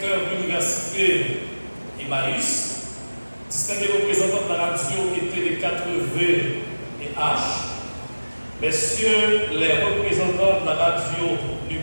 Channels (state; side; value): inverted; both; correlation -1.00